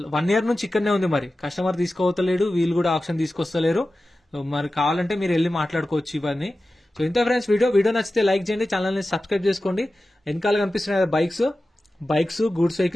1 year నుంచి ఇక్కడనే ఉంది. మరి కస్టమర్ తీసుకోవతలేడు, వీళ్ళు కూడా ఆప్షన్ తీసుకొస్తలేరు. మరి కావాలంటే మీరు వెళ్ళి మాట్లాడుకోవచ్చు ఇవన్నీ. సో ఇంత ఫ్రెండ్స్ వీడియో నచ్చితే లైక్ చేయండి, ఛానల్ ని సబ్స్క్రైబ్ చేసుకోండి. వెనకాల కనిపిస్తున్నాయి బైక్స్, గూడ్స్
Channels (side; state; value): both; normal; correlation 0.94